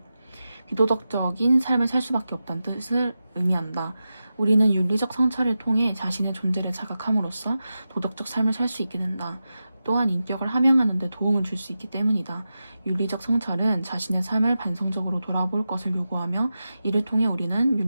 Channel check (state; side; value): inverted; both; correlation -0.92